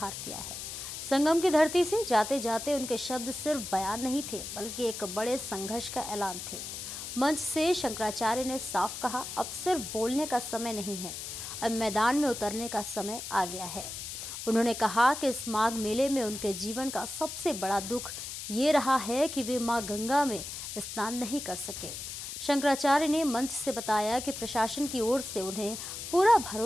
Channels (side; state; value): left; noise; hiss, 8 dB below the sound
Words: किया है। संगम की धरती से जाते जाते उनके शब्द सिर्फ बयान नहीं थे, बल्कि एक बड़े संघर्ष का ऐलान थे। मंच से शंकराचार्य ने साफ कहा, अब सिर्फ बोलने का समय नहीं है, अब मैदान में उतरने का समय आ गया है। उन्होंने कहा कि इस माघ मेले में उनके जीवन का सबसे बड़ा दुख ये रहा है कि वे मां गंगा में स्नान नहीं कर सके। शंकराचार्य ने मंच से बताया कि प्रशासन की ओर से उन्हें पूरा